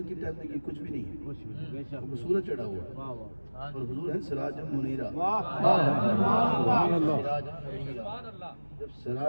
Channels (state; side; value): inverted; both; correlation -1.00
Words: کی ٹائم میں یہ کچھ بھی نہیں ہے. وہ سورج چڑھا ہوا ہے اور حضور ہے سراج منیرہ. جب